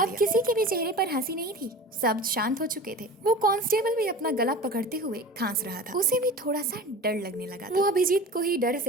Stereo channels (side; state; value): both; normal; correlation 0.36